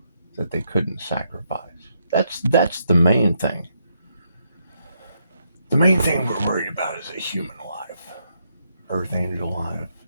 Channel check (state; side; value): inverted; both; correlation -0.78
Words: that they couldn't sacrifice? That's the main thing. The main thing we're worried about is a human life, earth angel life,